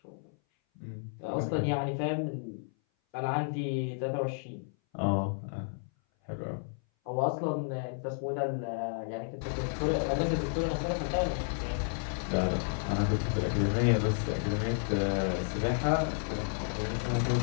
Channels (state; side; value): silent; right; 57 dB below the other